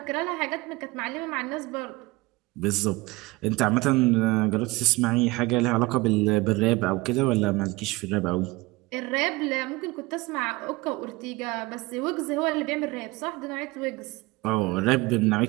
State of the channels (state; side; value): quieter; left; 21.9 dB